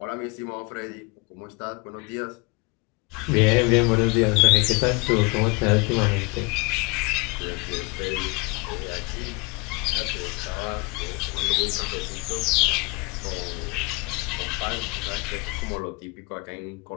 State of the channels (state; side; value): quieter; right; 27.7 dB